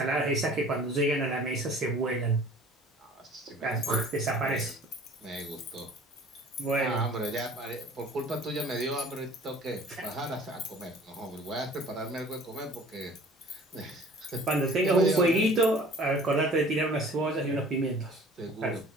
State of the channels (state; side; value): normal; both; correlation 0.49